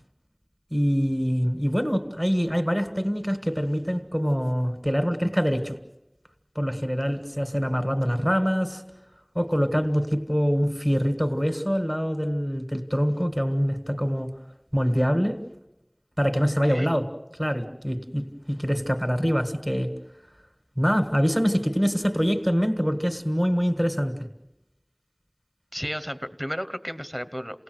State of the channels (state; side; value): identical; both; correlation 1.00